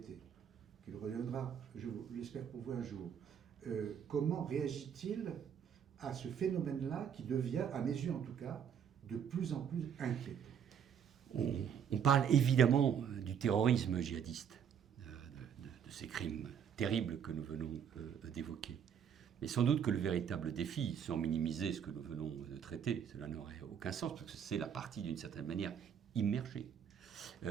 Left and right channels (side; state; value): left; quieter; 8.1 dB